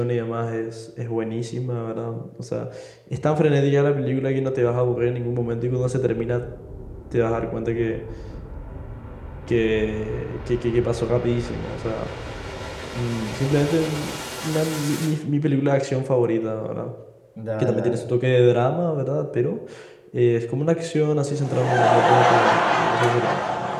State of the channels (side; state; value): both; identical; correlation 1.00